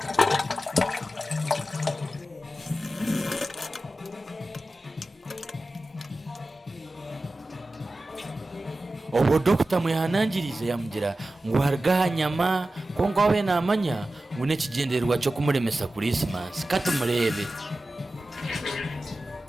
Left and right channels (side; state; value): both; normal; correlation 0.94